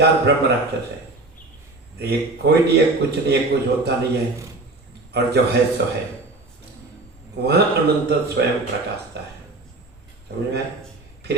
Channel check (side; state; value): left; quieter; 3.1 dB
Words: ब्रह्म राक्षस है। तो ये कोई नहीं है, कुछ नहीं है, कुछ होता नहीं है, और जो है सो है, वहां अनंत स्वयं प्रकाशता है। समझ में? फिर